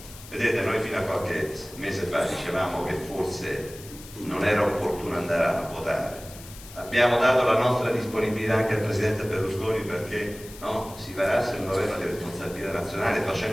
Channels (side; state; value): left; noise; hiss, 17 dB below the sound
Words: Vedete, noi fino a qualche mese fa dicevamo che forse non era opportuno andare a votare. Abbiamo dato la nostra disponibilità anche al Presidente Berlusconi perché si varasse un governo di responsabilità nazionale,